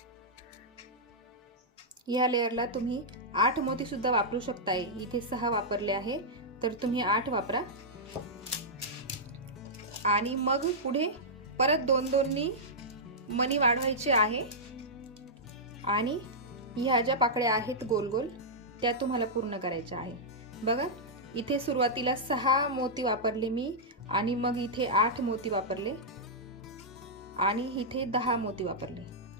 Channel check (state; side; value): normal; both; correlation -0.09